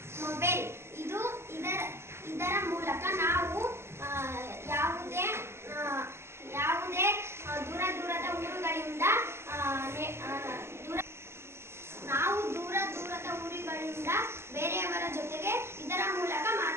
ಮೊಬೈಲ್. ಇದರ ಮೂಲಕ ನಾವು ಯಾವುದೇ ದೂರ ದೂರದ ಊರುಗಳಿಂದ ಬೇರೆಯವರ ಜೊತೆಗೆ ಇದರ ಮೂಲಕ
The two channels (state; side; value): late; left; 0.12 ms